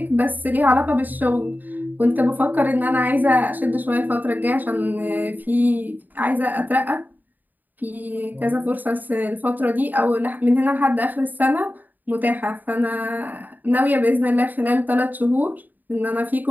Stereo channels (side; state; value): left; late; 0.086 ms